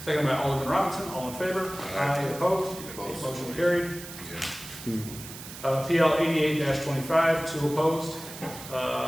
Second by Alderman Robinson. All in favor? Aye. Opposed? Motion carried. PL 88-25, 2 opposed.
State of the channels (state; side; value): noise; right; hiss, 13 dB below the sound